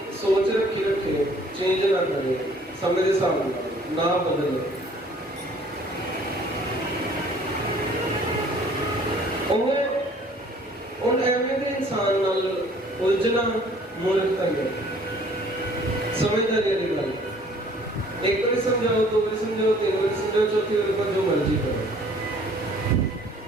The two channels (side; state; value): both; normal; correlation 0.55